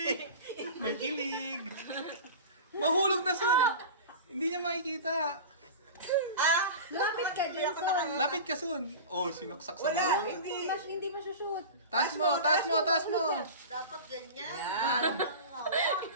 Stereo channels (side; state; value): both; inverted; correlation -0.33